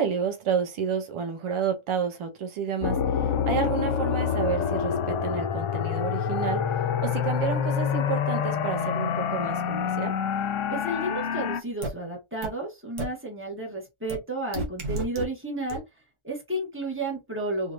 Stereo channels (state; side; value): late; left; 1.4 ms